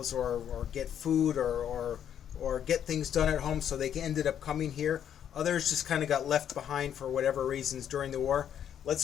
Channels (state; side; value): quieter; right; 9.4 dB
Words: or get food or get things done at home, so they ended up coming here. Others just kind of got left behind for whatever reasons during the war.